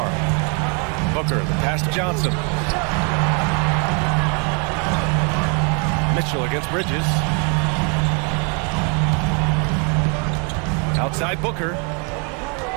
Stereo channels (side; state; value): left; quieter; 36.2 dB